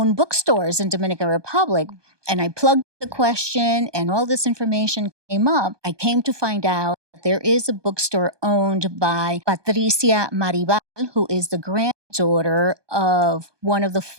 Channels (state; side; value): late; left; 1.2 ms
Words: bookstores in Dominican Republic. And I plugged the question and all this information came up. I came to find out that there is a bookstore owned by Patricia Maribal, who is the granddaughter of one of the